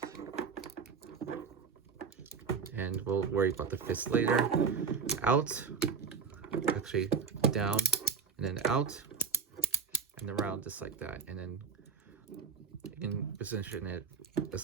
and we'll worry about the fist later. Out, actually down, and then out, and around just like that, and then you can position it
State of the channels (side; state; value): left; quieter; 6.0 dB